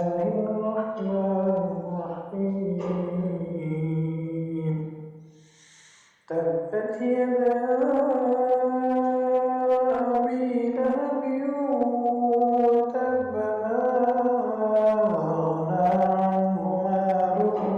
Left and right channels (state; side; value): identical; both; correlation 1.00